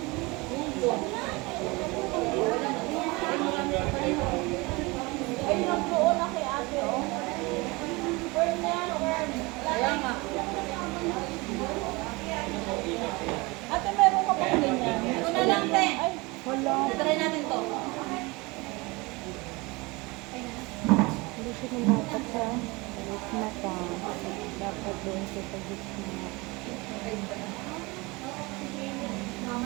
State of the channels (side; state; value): left; quieter; 24.7 dB